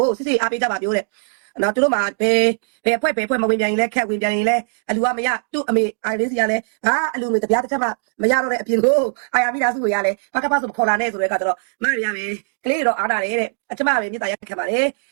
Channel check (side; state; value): left; silent; digital silence